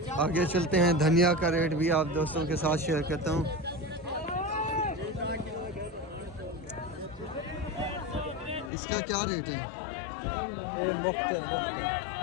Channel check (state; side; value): drops out; right; at 8.7 s